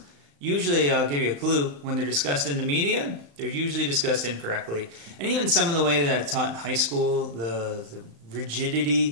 usually, I'll give you a clue, when they're discussed in the media, they're usually discussed incorrectly. And even some of the way that I taught in high school, the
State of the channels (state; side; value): late; left; 35 ms